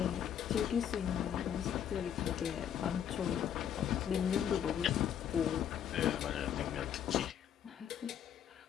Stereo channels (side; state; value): right; quieter; 9.3 dB